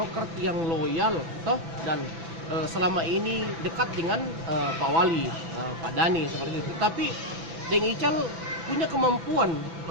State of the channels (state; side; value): late; left; 6.0 ms